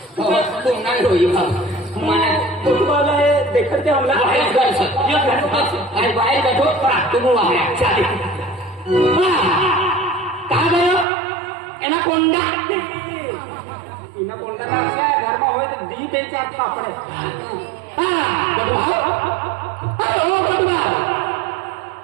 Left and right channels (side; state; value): left; drops out; at 11.1 s